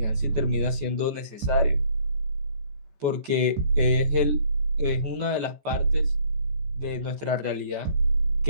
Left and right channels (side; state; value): left; late; 14 ms